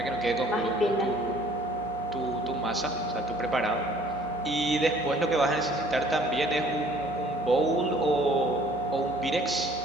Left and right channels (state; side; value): normal; both; correlation 0.55